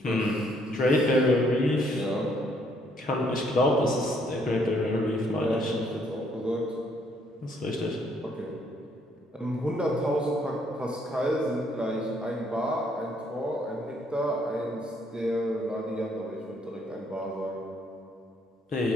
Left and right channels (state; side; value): normal; both; correlation 0.68